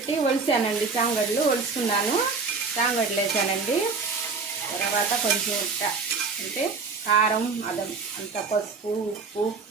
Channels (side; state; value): left; quieter; 4.6 dB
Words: ఒలిసానండి. చామగడ్డలు ఒలుసుకున్నాను. చామగడ్డలు వేసానండి. తర్వాత కొంచెం అంటే కారం అంత పసుపు, ఉప్పు